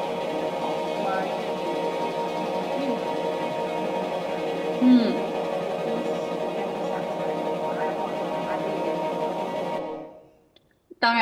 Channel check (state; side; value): identical; both; correlation 1.00